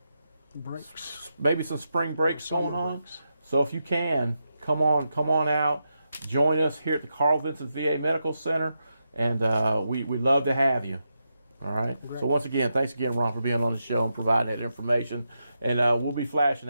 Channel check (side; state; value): both; inverted; correlation -0.86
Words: breaks, maybe some spring breaks going on. Breaks. So if you can, come on out, join us here at the Carl Vinson VA Medical Center, and we'd love to have you. All right. Great. So once again, thanks again, Ron, for being on the show and providing that information. And we'll be flashing